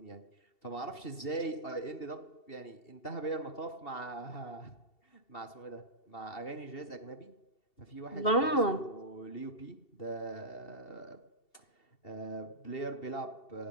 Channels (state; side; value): late; right; 2.7 ms